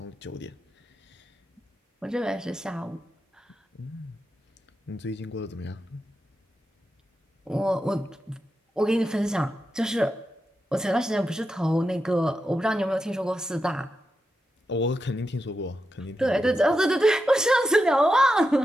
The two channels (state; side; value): normal; both; correlation 0.88